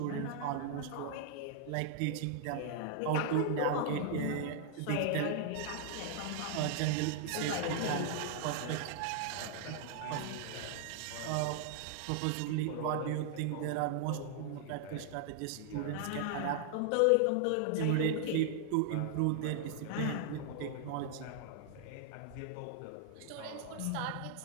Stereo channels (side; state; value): both; different; correlation -0.01